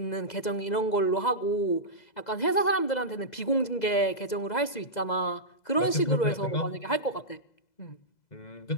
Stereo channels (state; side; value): late; right; 2.0 ms